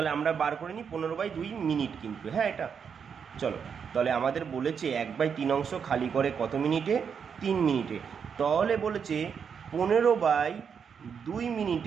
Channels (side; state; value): left; quieter; 6.8 dB